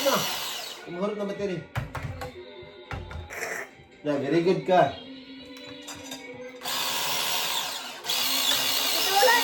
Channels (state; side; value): identical; both; correlation 1.00